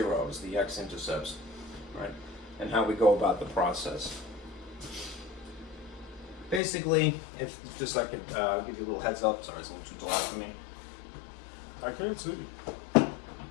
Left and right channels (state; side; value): drops out; right; at 6.6 s